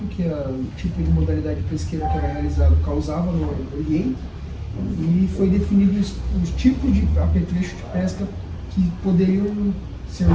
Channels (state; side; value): identical; both; correlation 1.00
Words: que o tipo de modalidade pesqueira que era realizado causava no ambiente, e foi definido os tipos de apetrecho de pesca que poderiam ser